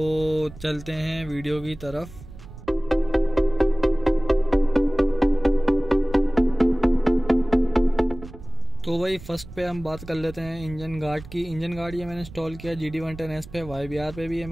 चलते हैं वीडियो की तरफ। तो भाई फर्स्ट पे हम बात कर लेते हैं इंजन गार्ड की। इंजन गार्ड ये मैंने इंस्टॉल किया GD110S पे, YBR पे भी ये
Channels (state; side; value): noise; right; rumble, 16 dB below the sound